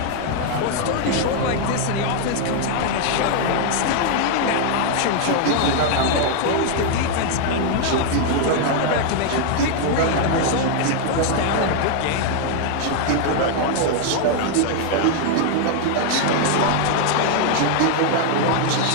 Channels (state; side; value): different; both; correlation 0.00